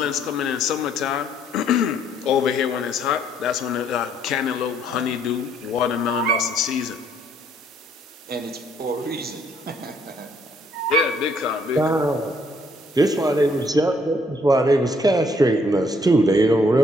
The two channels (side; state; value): both; normal; correlation 0.66